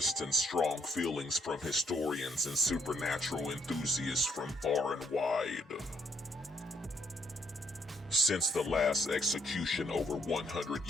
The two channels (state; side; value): normal; both; correlation 0.70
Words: and strong feelings from historians and supernatural enthusiasts from far and wide. Since the last execution over 100